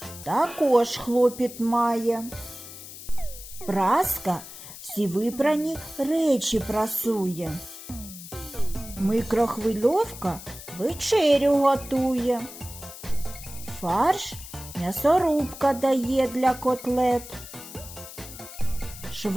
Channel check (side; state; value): left; noise; hiss, 14 dB below the sound